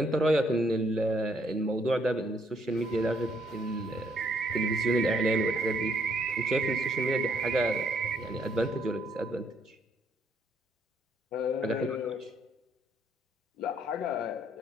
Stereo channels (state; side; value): normal; both; correlation 0.69